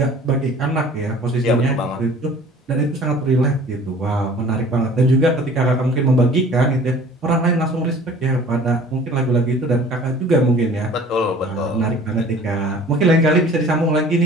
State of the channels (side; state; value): both; normal; correlation 0.48